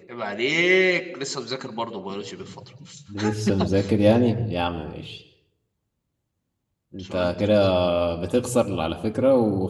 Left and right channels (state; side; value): identical; both; correlation 1.00